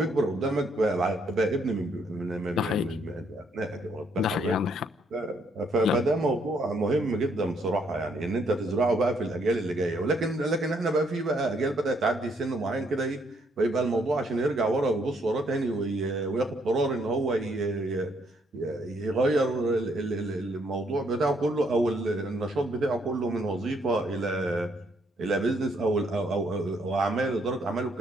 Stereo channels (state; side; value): normal; both; correlation 0.70